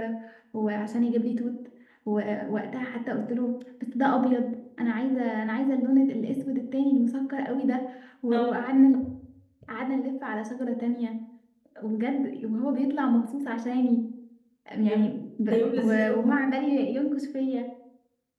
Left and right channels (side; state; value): both; identical; correlation 1.00